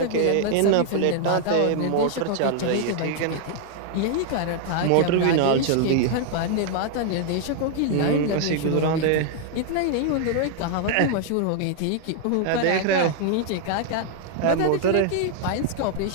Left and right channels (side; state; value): both; different; correlation 0.00